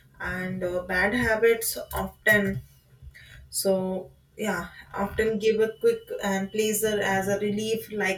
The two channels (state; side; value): identical; both; correlation 1.00